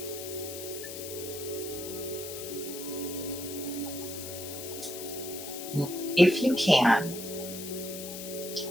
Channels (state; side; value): noise; left; hiss, 9 dB below the sound